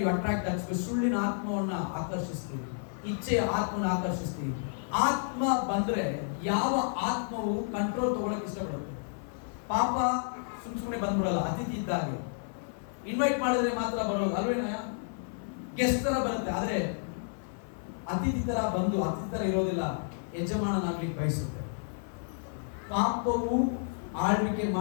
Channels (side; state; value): right; silent; 57 dB below the other